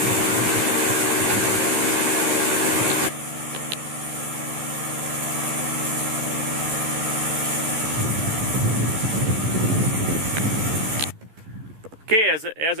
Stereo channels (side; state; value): left; late; 13 ms